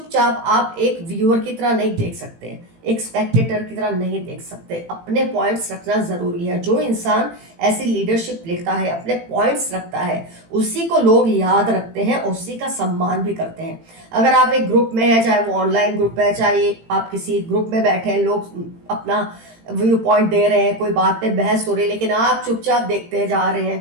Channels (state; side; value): late; left; 18 ms